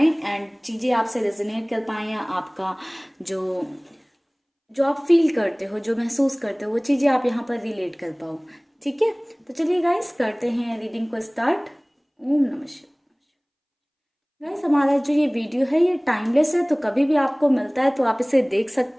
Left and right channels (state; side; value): identical; both; correlation 1.00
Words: एंड चीज़ें आपसे रेजोनेट कर पाएँ, या आपका जो जो आप फील करते हो, जो महसूस करते हो, वो चीज़ें आप यहाँ पर रिलेट कर पाओ। ठीक है, तो चलिए गाइस करते हैं रीडिंग को स्टार्ट। ओम नमः शिवाय। गाइस, हमारा जो ये वीडियो है ये टाइमलेस है, तो कभी भी आपको मिलता है तो आप इसे देख